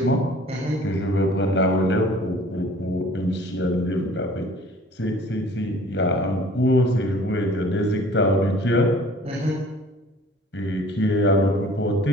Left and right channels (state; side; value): normal; both; correlation 0.50